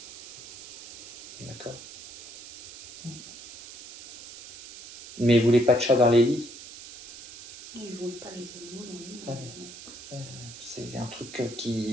D'accord. Mais vous voulez pas de chat dans les lits? Non, ils ne voulaient pas les animaux dans le lit. Ah oui. C'est un truc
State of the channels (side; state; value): right; noise; hiss, 15 dB below the sound